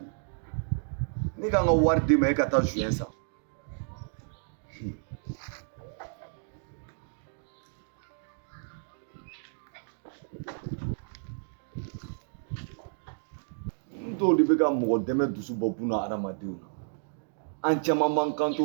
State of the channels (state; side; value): silent; left; digital silence